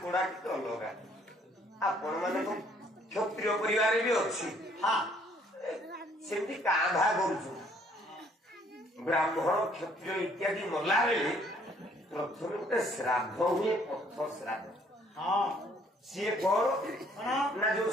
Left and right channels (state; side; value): normal; both; correlation 0.63